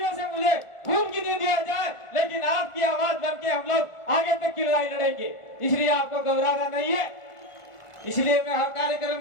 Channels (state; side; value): late; right; 1.4 ms